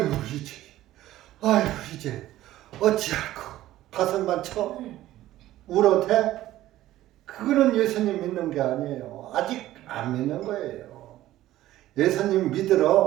이제 어찌할꼬 가슴만 쳐 울어대? 그거는 예수님 믿는 게 아니에요. 아직 안 믿는 거예요. 예수님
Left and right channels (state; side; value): quieter; left; 14.7 dB